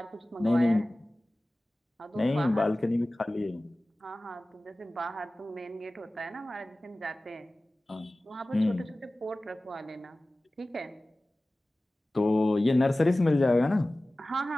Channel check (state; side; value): normal; both; correlation 0.97